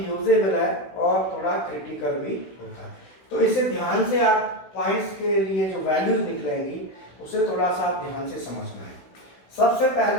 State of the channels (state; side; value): late; right; 16 ms